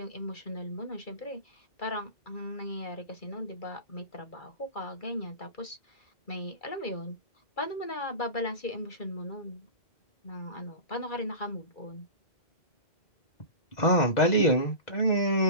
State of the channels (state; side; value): late; right; 2.3 ms